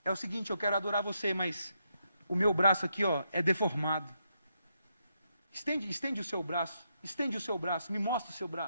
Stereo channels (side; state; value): both; inverted; correlation -0.80